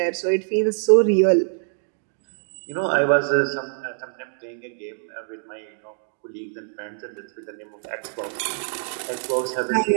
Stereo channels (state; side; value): silent; left; digital silence